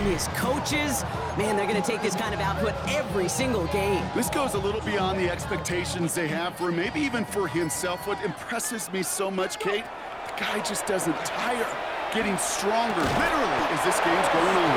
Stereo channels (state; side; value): identical; both; correlation 1.00